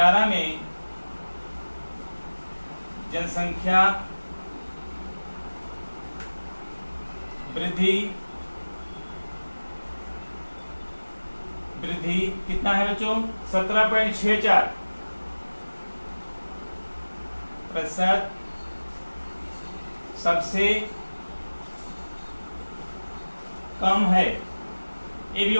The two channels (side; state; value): both; inverted; correlation -1.00